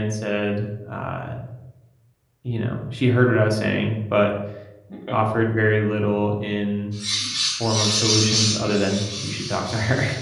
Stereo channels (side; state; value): both; identical; correlation 1.00